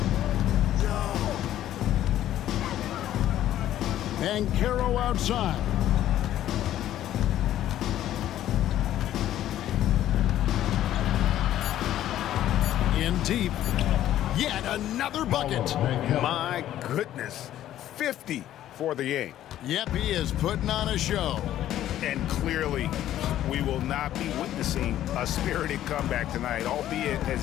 Banchero outside. In deep. Yet another bucket. My goodness. 50 for the game. Yep, he is putting on a show. And clearly, we will not be witnessing a spirited comeback tonight, albeit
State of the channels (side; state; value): right; quieter; 12.4 dB